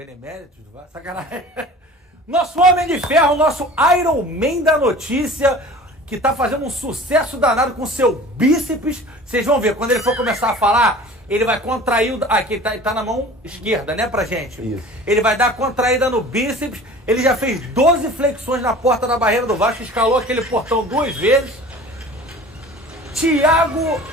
do Vasco. Sacanagem. Nosso Homem de Ferro, nosso Iron Man da notícia, que tá fazendo um sucesso danado com seu bíceps. Vocês vão ver, quando ele for começar a falar, ele vai contrair o... Aqui, ele tá na mão esquerda, né, pra gente? Isso. Ele vai dar contraída no bíceps. Ele já fez 12 flexões na porta da barreira do Vasco, escalou aquele portão 2 vezes. Thiago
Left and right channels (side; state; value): both; normal; correlation 0.42